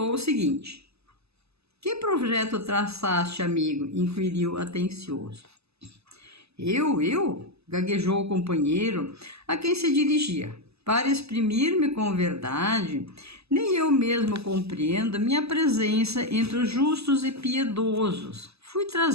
o seguinte. Que projeto traçaste, amigo? Inquiriu atencioso. Eu? Gaguejou o companheiro a quem se dirigia. Para exprimir-me com verdade, nem eu mesmo compreendo minha presença entre os justos e piedosos. Fui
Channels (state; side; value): late; left; 0.79 ms